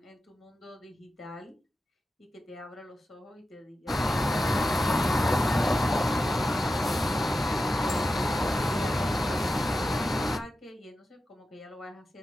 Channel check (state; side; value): normal; both; correlation 0.91